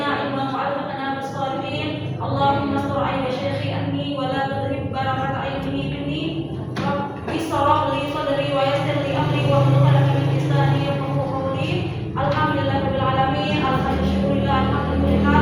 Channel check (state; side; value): identical; both; correlation 1.00